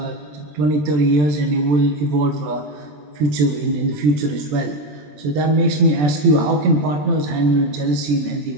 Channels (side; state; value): left; late; 20 ms